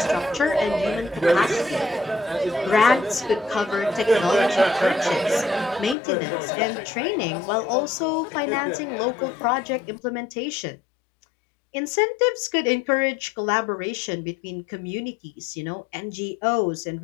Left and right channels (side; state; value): right; drops out; at 6.0 s